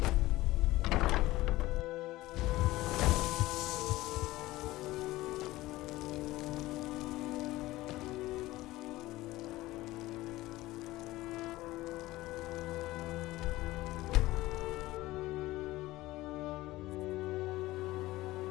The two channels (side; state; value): right; quieter; 17.8 dB